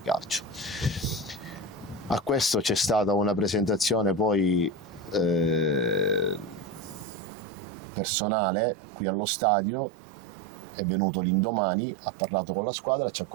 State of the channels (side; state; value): left; drops out; at 7.1 s